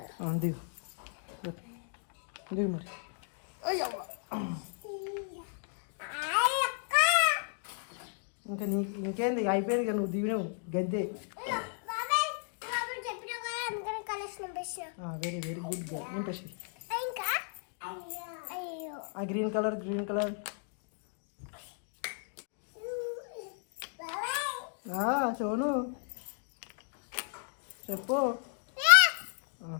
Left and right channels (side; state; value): right; silent; 55 dB below the other